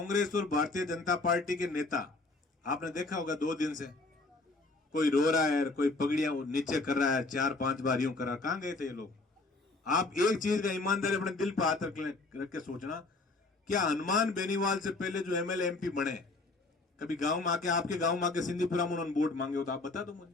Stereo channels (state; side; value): quieter; right; 3.3 dB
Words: और भारतीय जनता पार्टी के नेता आपने देखा होगा 2 दिन से कोई रो रहा है, कोई पगड़ियां नीचे कर रहा है, 4-5 बार यूं कर रहा है। कहां गए थे ये लोग? आप एक चीज का ईमानदारी अपने दिल पर हाथ रख के सोचना, क्या हनुमान बेनीवाल से पहले जो एमएलए एमपी बने कभी गांव में आके, आपके गांव में आके सिंधीपुरा में उन्होंने वोट मांगे हो तो आप बता दो मुझे।